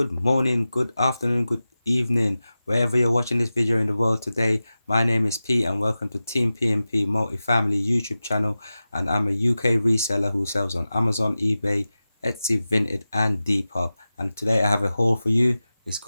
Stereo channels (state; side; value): inverted; both; correlation -0.95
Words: morning, good afternoon, good evening, wherever you're watching this video in the world today. My name is Pete and welcome to Team PMP Multifamily YouTube channel, and I'm a UK reseller who sells on Amazon, eBay, Etsy, Vinted and Depop. And today I have a haul for you. It's